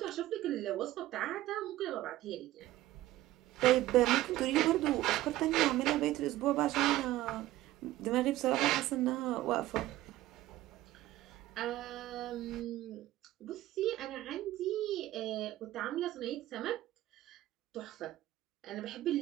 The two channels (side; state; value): left; quieter; 15.5 dB